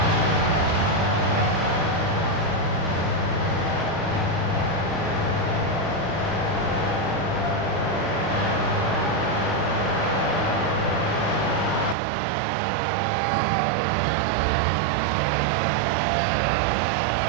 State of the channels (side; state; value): left; drops out; at 12.0 s